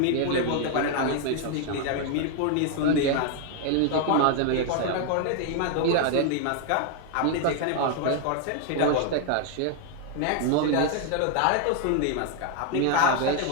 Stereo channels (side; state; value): both; different; correlation 0.00